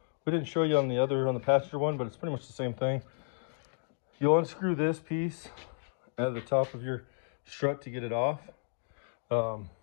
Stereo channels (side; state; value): right; silent; digital silence